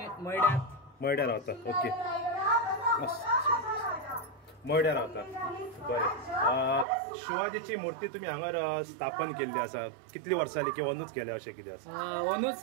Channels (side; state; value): left; drops out; at 6.9 s